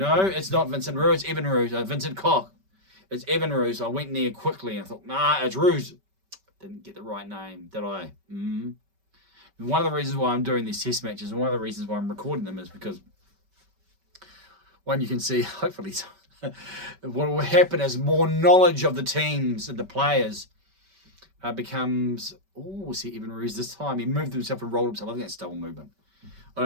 it's not Vincent Roux. It's Evan Roux. Vincent Koch. It's Evan Roux. I went near quickly and I thought, nah, it's Roux. Didn't get the right name, did I? One of the reasons why I'm doing these test matches and one of the reasons why I'm recording them is because one, you can see, hopefully, what will happen as more knowledge of the teams and the players becomes... we'll see Evan Roux this time. He moved himself and rolled himself. I think that's double movement. I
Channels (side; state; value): left; late; 5.2 ms